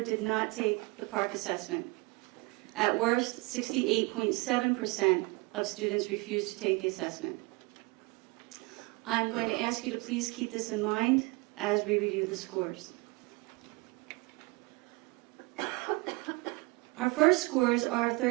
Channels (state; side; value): quieter; left; 26.1 dB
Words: did not take the park assessment. At worst, 68.7% of students refused to take the assessment. I'm going to ask you to please keep this in mind as we review the scores. Our first scores are